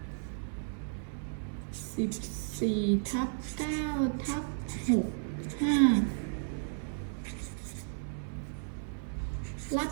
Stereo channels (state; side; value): silent; left; 55 dB below the other